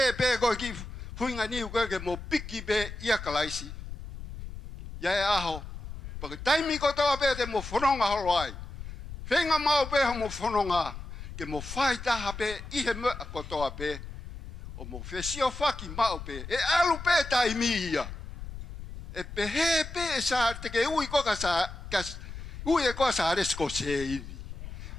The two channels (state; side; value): noise; left; rumble, 11 dB below the sound